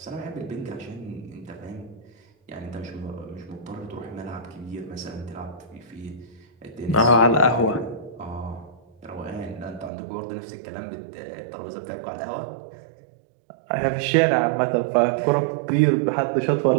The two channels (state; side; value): drops out; left; at 9.9 s